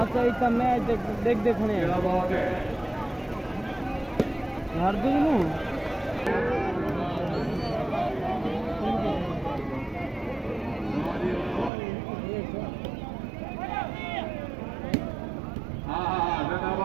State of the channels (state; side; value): drops out; left; at 11.7 s